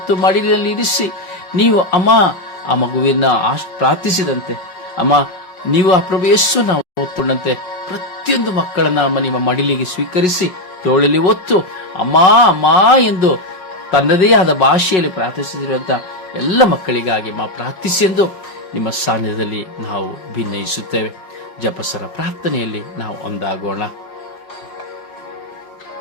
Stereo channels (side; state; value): right; late; 5.5 ms